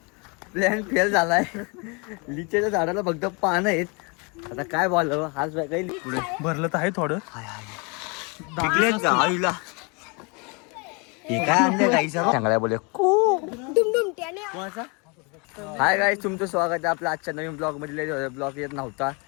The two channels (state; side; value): quieter; right; 31.2 dB